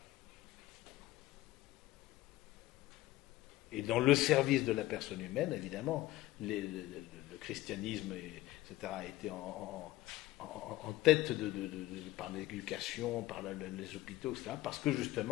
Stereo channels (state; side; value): quieter; right; 16.6 dB